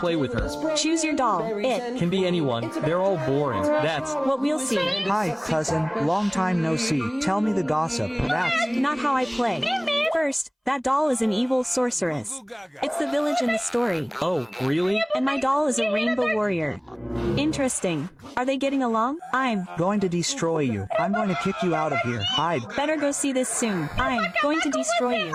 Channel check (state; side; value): identical; both; correlation 1.00